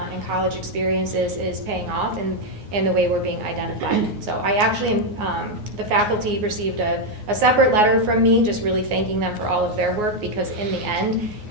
college experiences is paying off in the way we're being identified. So I actually, the faculty received a separate letter from me, just really thanking them for all of their work, because in the end,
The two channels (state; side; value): late; left; 9.6 ms